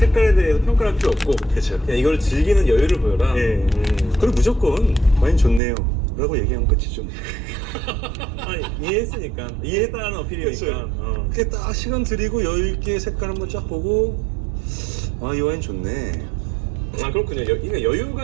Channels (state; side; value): drops out; left; at 5.6 s